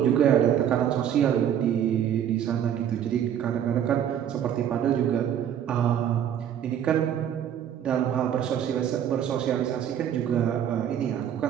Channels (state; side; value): quieter; left; 9.6 dB